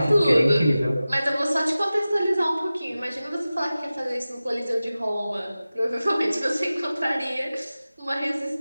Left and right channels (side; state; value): both; inverted; correlation -0.96